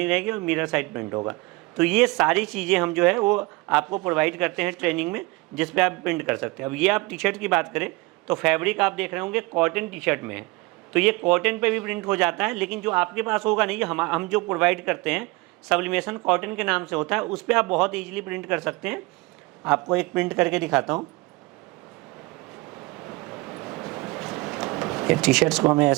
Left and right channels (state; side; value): quieter; left; 23.6 dB